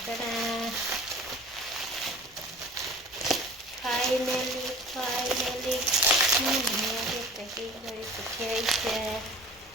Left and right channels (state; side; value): normal; both; correlation 0.42